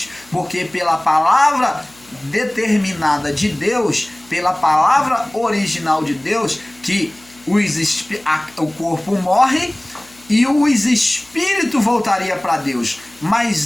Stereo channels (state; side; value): noise; left; hum, 28 dB below the sound